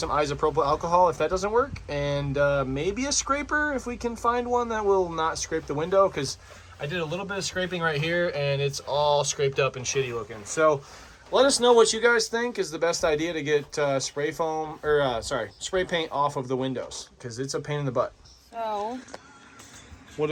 isopropyl alcohol if that doesn't work, and maybe a scraper if we can find one that will not scrape the window, because I did a little bit of scraping right here and it's all scraped up and shitty looking. So let us know what you guys think is the best idea to get spray paint off of the windows, because it's a pain in the butt. So what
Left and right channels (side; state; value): both; identical; correlation 1.00